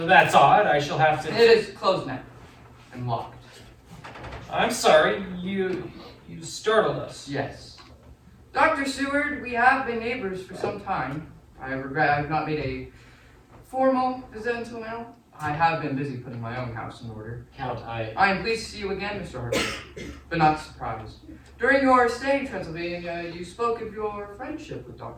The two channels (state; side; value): identical; both; correlation 1.00